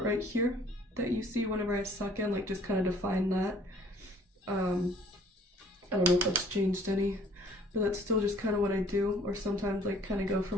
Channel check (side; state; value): both; normal; correlation 0.56